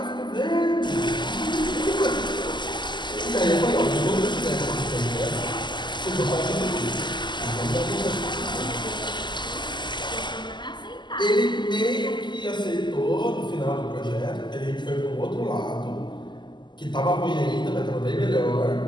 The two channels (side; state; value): right; late; 0.22 ms